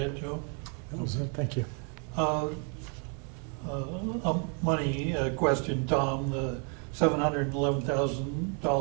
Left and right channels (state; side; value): quieter; left; 39.6 dB